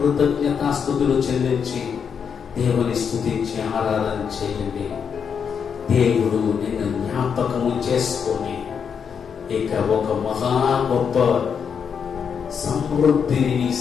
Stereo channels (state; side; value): quieter; right; 6.9 dB